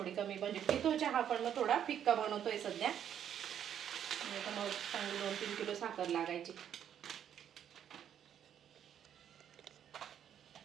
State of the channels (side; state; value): left; quieter; 9.4 dB